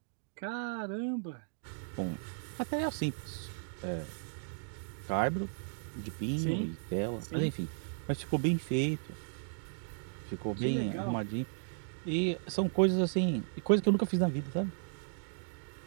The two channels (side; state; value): left; silent; digital silence